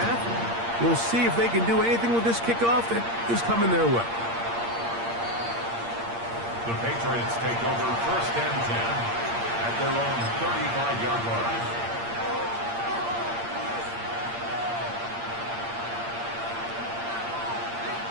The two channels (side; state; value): left; late; 8.6 ms